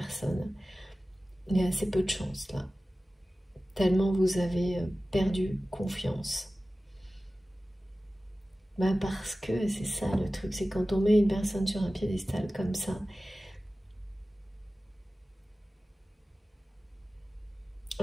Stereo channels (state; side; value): normal; both; correlation 0.96